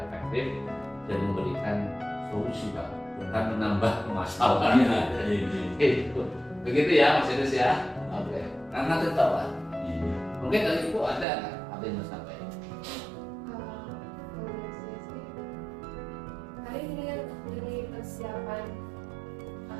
dan memberikan solusi Pak, bukan menambah masalah. Gitu. Begitu ya Mas Idris ya. Oke. Karena tetap Pak. Mungkin dari Ibu ada nggak apa yang mau sampaikan? Hari ini kan jadi persiapan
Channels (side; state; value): left; drops out; at 11.2 s